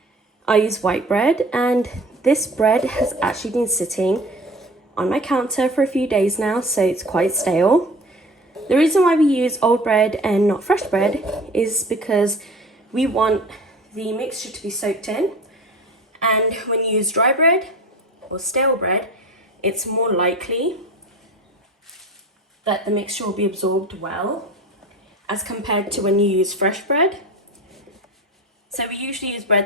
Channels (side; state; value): both; normal; correlation 0.38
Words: I use white bread, and this bread has actually been sitting on my counter for a few days now, so it's quite stale. The reason why we use old bread and not fresh bread is because we want the mixture to be soaked in, and when you use dry bread or stale bread, it's more likely that the mixture will be absorbed well as compared to when you use fresh bread. So we usually use